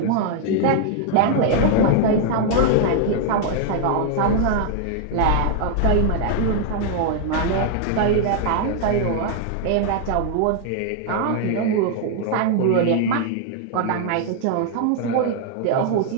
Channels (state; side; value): different; both; correlation 0.00